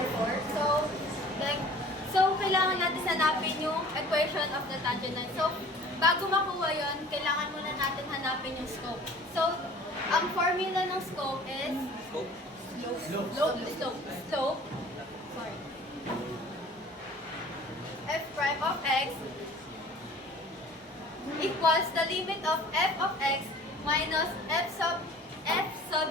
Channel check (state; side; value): normal; both; correlation 0.47